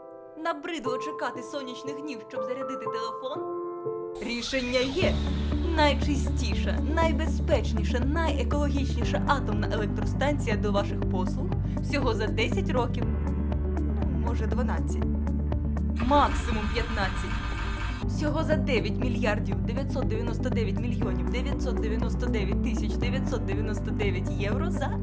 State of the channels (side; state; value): both; identical; correlation 1.00